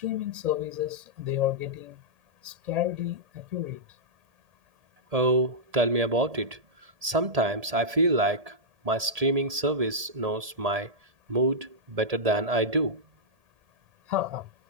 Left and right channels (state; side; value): late; left; 1.7 ms